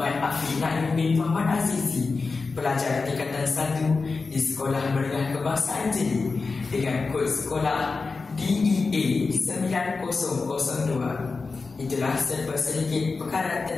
Afiq Naim bin Muhammad Azizi, pelajar tingkatan 1 di Sekolah Menengah Kebangsaan Jeli dengan kod sekolah DEA 9002. Itulah serba sedikit perkara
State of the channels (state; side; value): quieter; right; 4.2 dB